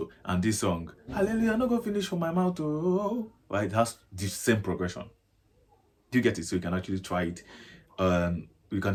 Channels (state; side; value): identical; both; correlation 1.00